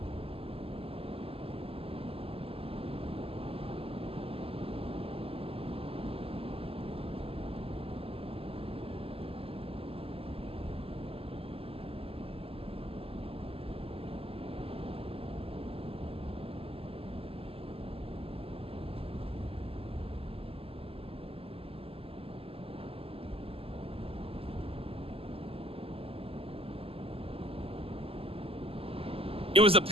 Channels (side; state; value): left; late; 0.28 ms